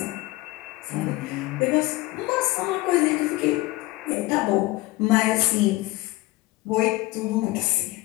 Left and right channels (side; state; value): right; quieter; 20.0 dB